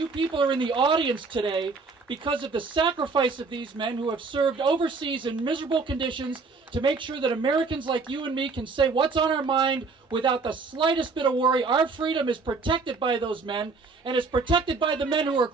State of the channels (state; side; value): quieter; left; 4.3 dB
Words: people are in the audience today because of the sacrifice of these men who have served overseas in miserable conditions to make sure that Americans like you and me can say what's on our mind without the slightest bit of worry. Our freedom is protected by those men, and it's protected by the men who are